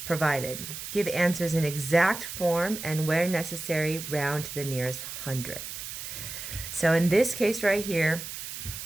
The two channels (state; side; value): noise; right; hiss, 8 dB below the sound